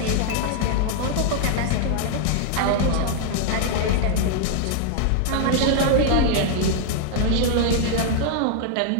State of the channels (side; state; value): both; different; correlation 0.00